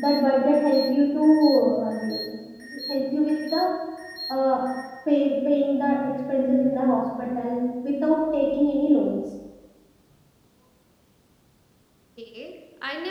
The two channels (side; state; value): both; identical; correlation 1.00